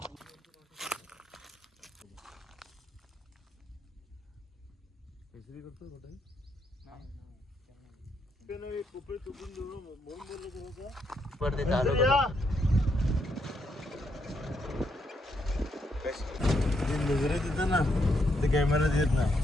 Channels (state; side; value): normal; both; correlation 0.77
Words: नजरे तिथं ना ते कॅमेऱ्यात येत नाही.